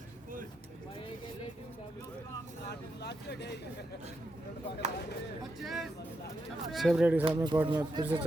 सेव रेडी साहब में कोर्ट में फिर से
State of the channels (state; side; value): normal; both; correlation 0.84